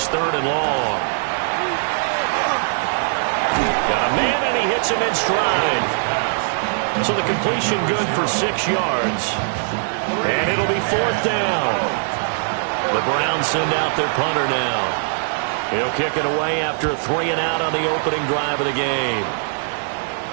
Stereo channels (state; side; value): silent; left; 59 dB below the other